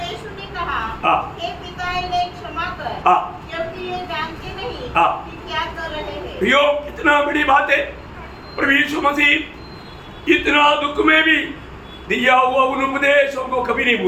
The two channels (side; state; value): both; identical; correlation 1.00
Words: यीशु ने कहा, हाँ। हे पिता इन्हें क्षमा कर, हाँ। क्योंकि ये जानते नहीं हाँ। कि क्या कर रहे हैं। प्रियो, कितना बड़ी बात है। प्रभु यीशु मसीह इतना दुख में भी दिया हुआ उन उपदेशों को कभी नहीं